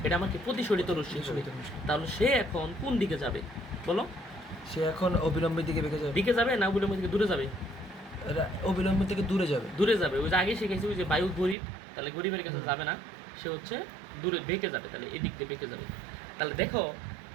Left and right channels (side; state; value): left; drops out; at 11.6 s